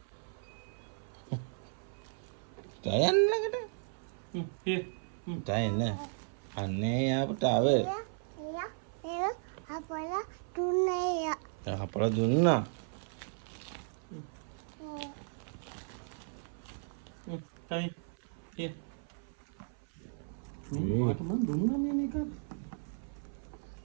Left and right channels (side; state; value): left; silent; 54 dB below the other